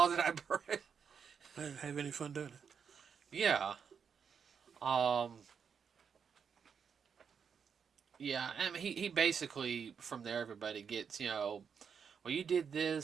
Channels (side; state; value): left; quieter; 6.8 dB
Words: did I break? I didn't have any fun doing it. Yeah. Um. Yeah. I mean, he basically from there everybody gets, you know, well, you did